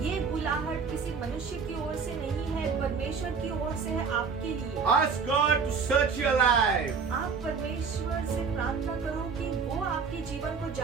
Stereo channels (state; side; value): quieter; left; 5.5 dB